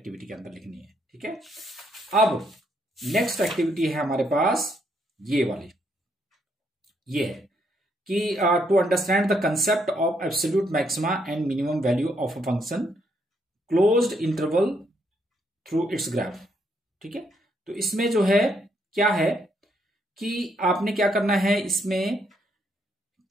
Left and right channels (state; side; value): normal; both; correlation 0.74